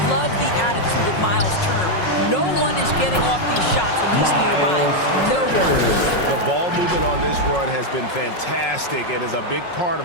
love the attitude of Miles Turner. No one is getting off these shots when he's nearby. No one. The ball movement on this run has been fantastic and is a big part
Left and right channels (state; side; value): late; right; 5.5 ms